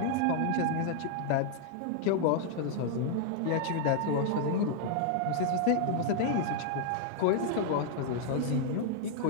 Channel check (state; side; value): different; both; correlation 0.00